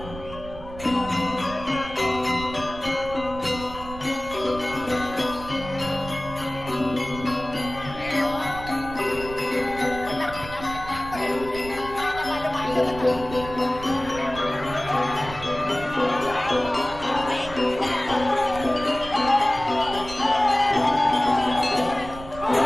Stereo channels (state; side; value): noise; right; rumble, 13 dB below the sound